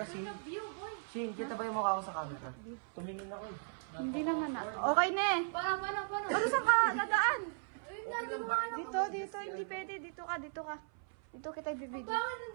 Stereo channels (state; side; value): silent; left; 53 dB below the other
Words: Shin? Shin, kita ba yung mukha ko sa camera? Tumingin ako eh. Hindi naman na. Okay na eh. Paano? Ano saan ka dadaan? Ayun na, ginawa na. Dito. Hindi pwede. Dito ka. Dito kita ibibigay. Bakit